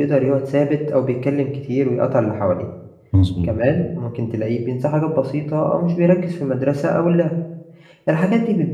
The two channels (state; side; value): identical; both; correlation 1.00